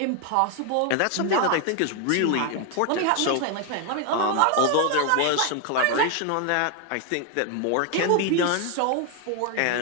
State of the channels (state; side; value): different; both; correlation 0.01